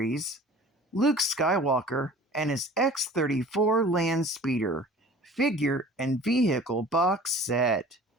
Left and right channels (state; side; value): normal; both; correlation 0.44